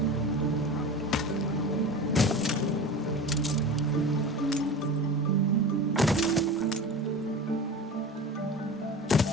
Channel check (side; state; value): both; normal; correlation 0.31